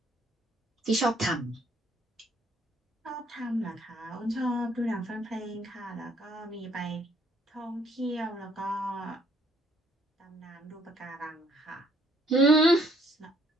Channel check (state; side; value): normal; both; correlation 0.65